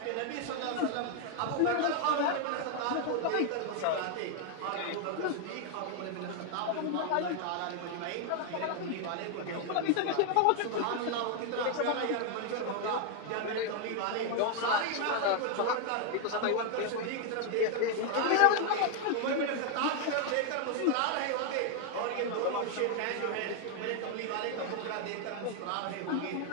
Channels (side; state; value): both; different; correlation 0.00